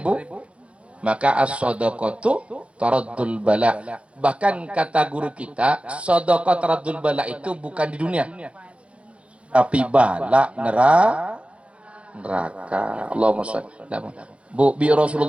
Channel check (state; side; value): late; left; 0.061 ms